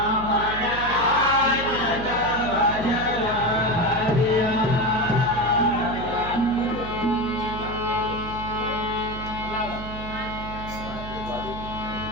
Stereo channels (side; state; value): right; noise; hum, 10 dB below the sound